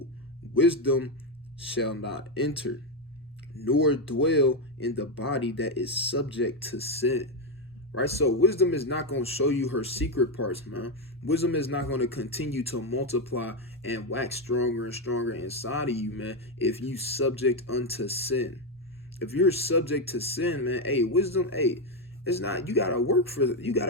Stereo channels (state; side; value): normal; both; correlation 0.07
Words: wisdom shall not enter, nor dwell in the body that is subject to sin. Right? So wisdom is not going to show you her secret parts, man. Wisdom is not going to continue to multiply and wax stronger and stronger inside of you, man, if you subject unto sin. If you're subject to sin, man, hey, wisdom, hey, it's not, you gotta work for